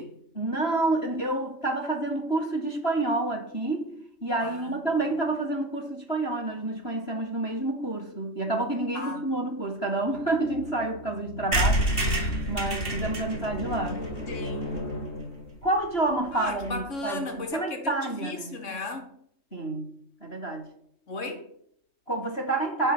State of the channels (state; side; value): late; right; 2.7 ms